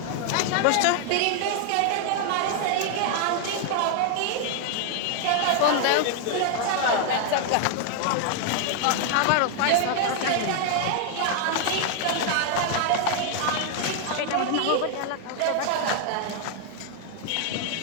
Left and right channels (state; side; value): different; both; correlation 0.00